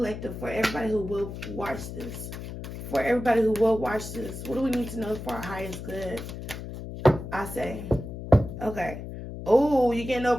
for everybody who will watch this? For everybody who will watch this, what do we need to know for our highest good? I say, okay. Oh, you're getting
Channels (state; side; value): noise; left; hum, 9 dB below the sound